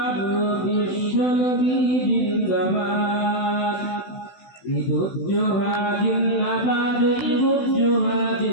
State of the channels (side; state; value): right; late; 16 ms